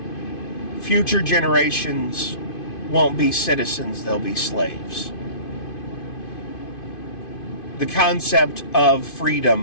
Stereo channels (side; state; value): right; late; 2.5 ms